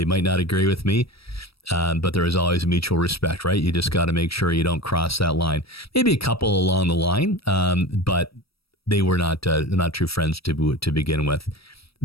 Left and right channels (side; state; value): right; late; 0.76 ms